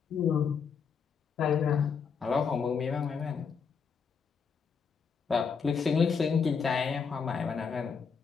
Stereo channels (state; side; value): quieter; right; 6.1 dB